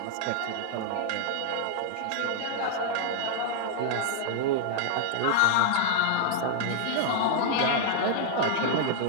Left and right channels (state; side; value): different; both; correlation -0.01